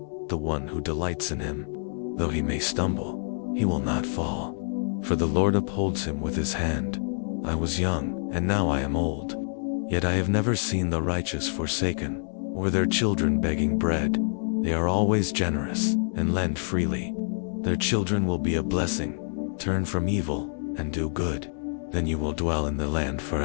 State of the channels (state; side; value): silent; right; digital silence